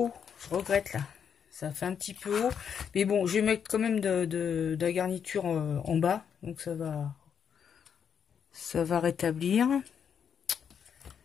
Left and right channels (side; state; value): right; quieter; 7.6 dB